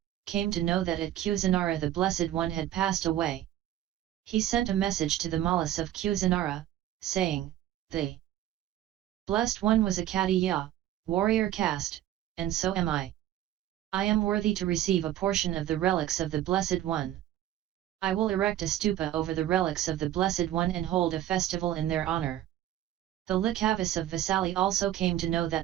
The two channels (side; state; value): left; quieter; 12.7 dB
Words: came to know that at Kusinara the Blessed One had passed away. He sent a message to the Mallas of Kusinara, saying, "The Blessed One was a Khattiya, warrior caste, and so am I. I am worthy to receive a portion of the relics of the Blessed One. I will erect a stupa over the relics of the Blessed One and hold a festival in their honor." The Licchavis of Vesali also came to know